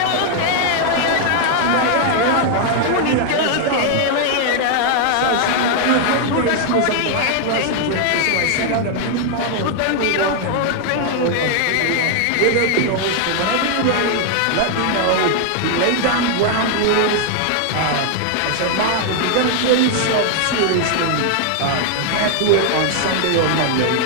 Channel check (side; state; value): both; different; correlation 0.00